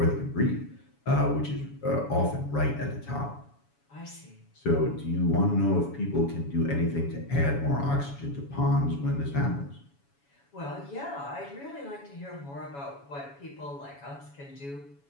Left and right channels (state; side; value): late; right; 7.1 ms